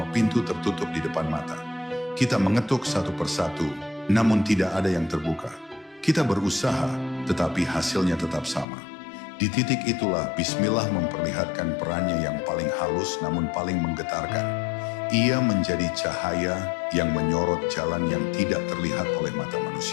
pintu tertutup di depan mata. Kita mengetuk satu persatu, namun tidak ada yang terbuka. Kita berusaha, tetapi hasilnya tetap sama. Di titik itulah Bismillah memperlihatkan perannya yang paling halus namun paling menggetarkan. Ia menjadi cahaya yang menyorot jalan yang tidak terlihat oleh mata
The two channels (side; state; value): right; drops out; at 8.7 s